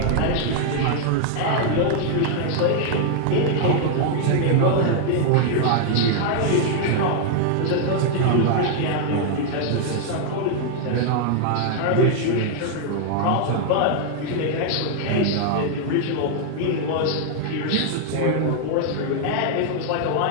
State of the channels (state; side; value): different; both; correlation 0.00